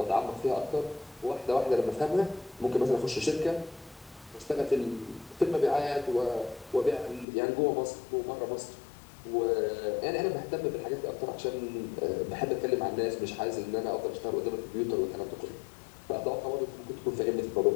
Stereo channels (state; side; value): drops out; right; at 7.2 s